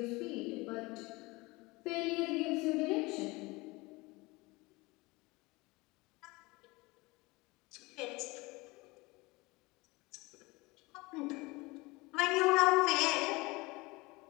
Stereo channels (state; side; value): quieter; right; 23.4 dB